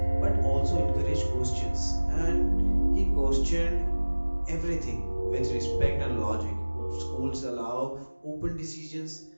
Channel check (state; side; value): inverted; both; correlation -1.00